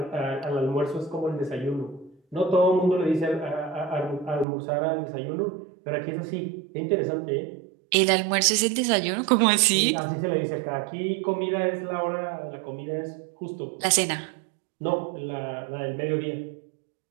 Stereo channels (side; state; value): left; drops out; at 4.5 s